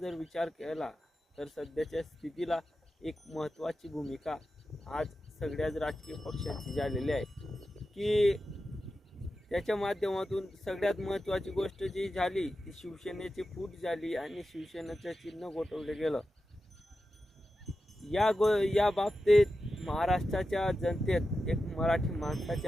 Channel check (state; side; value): normal; both; correlation 0.91